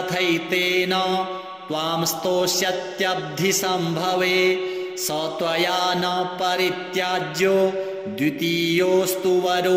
त्वां स्तोष्यत्यब्धिसम्भवे स त्वया न परित्याज्यो द्वितीयोऽस्तु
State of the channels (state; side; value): identical; both; correlation 1.00